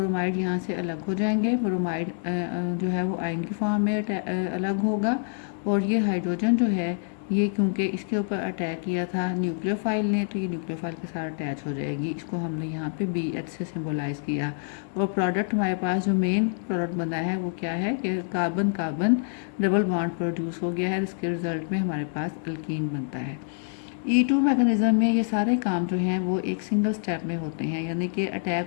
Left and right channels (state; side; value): silent; right; 61 dB below the other